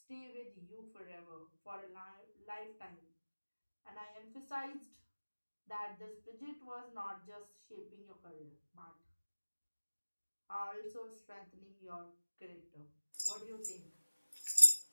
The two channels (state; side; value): inverted; both; correlation -1.00